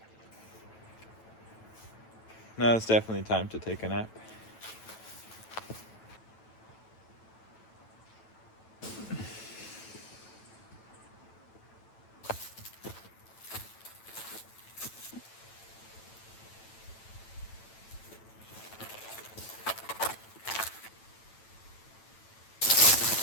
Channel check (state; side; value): late; right; 9.0 ms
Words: Now it's definitely time to take a nap.